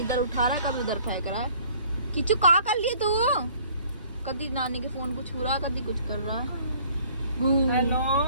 उठा रहा है, कभी उधर फेंक रहा है। किचू कहाँ कर लिए तू? कभी नानी के फोन को छू रहा है, कभी कुछ कर रहा है। हेलो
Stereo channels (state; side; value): inverted; both; correlation -0.55